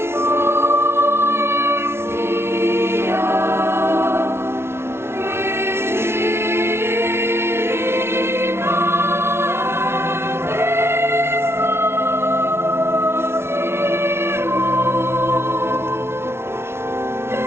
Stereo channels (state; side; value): late; left; 0.12 ms